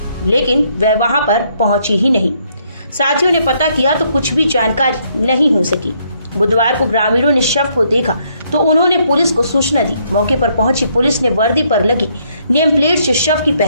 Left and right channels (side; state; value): both; inverted; correlation -0.71